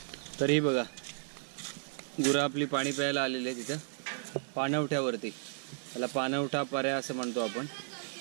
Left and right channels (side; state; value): left; silent; digital silence